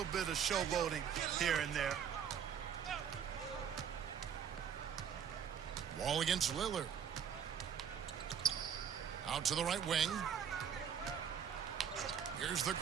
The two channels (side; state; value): left; quieter; 8.0 dB